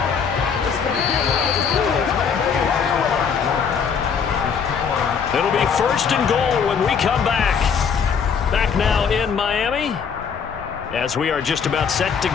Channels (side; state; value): right; quieter; 6.6 dB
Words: It'll be first and goal when we come back. Back now in Miami, as we are just about set to